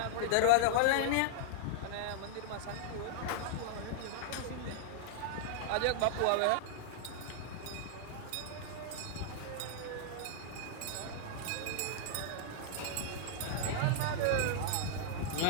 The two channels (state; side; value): different; both; correlation -0.01